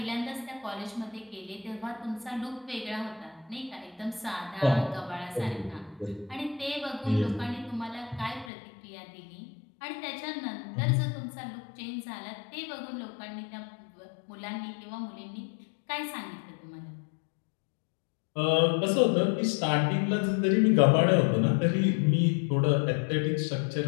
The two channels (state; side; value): drops out; right; at 8.5 s